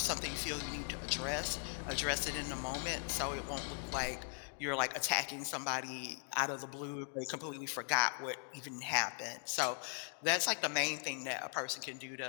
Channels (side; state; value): right; silent; 52 dB below the other